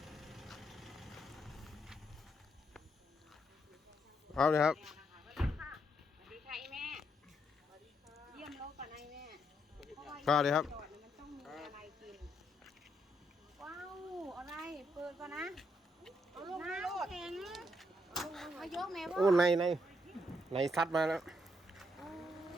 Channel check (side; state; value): both; normal; correlation 0.76